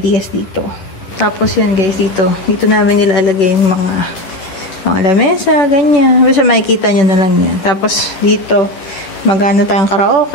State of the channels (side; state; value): right; late; 11 ms